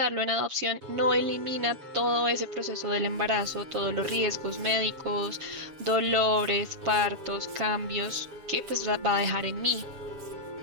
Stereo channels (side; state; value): left; late; 7.6 ms